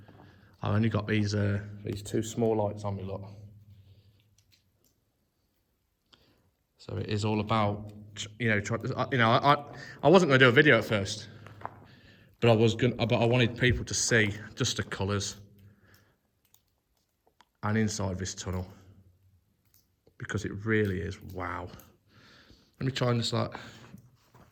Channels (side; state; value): both; identical; correlation 1.00